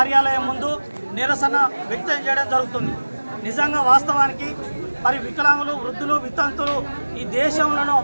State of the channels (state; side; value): inverted; both; correlation -1.00